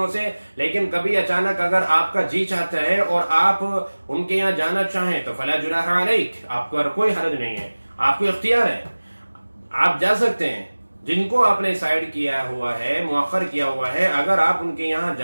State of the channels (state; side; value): inverted; both; correlation -1.00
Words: سے، لیکن کبھی اچانک اگر آپ کا جی چاہتا ہے اور آپ ان کے یہاں جانا چاہیں تو فَلَا جُنَاحَ عَلَيْكَ، آپ کو کوئی حرج نہیں ہے، آپ کو اختیار ہے، آپ جا سکتے ہیں۔ جن کو آپ نے سائڈ کیا ہوا ہے، مؤخر کیا ہوا ہے، اگر آپ ان کے یہاں